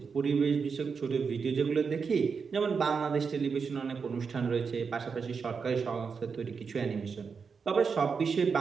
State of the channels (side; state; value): left; quieter; 5.6 dB